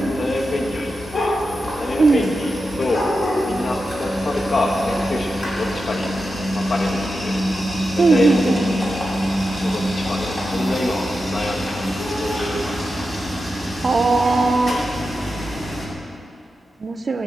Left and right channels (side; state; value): both; normal; correlation 0.90